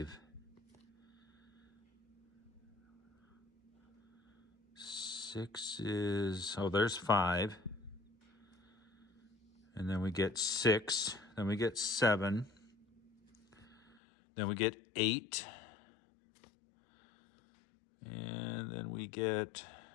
6 is, oh, there's 5. And then we get 6. Then we get 7. Then we get 8. And then we get,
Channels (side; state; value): right; drops out; at 14.0 s